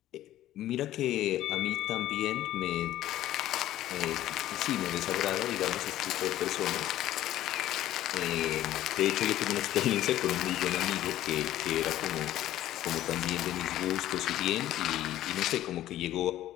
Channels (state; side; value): quieter; right; 13.6 dB